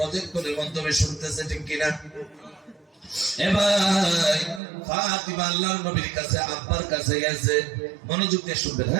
মাধ্যমে শুনতেছে, ঠিক কিনা? এ ভাই ফাতিমা আল্লাহর নবীর কাছে আব্বার কাছে গেছে, মনোযোগ দিয়ে শুনবেন।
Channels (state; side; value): drops out; left; at 4.6 s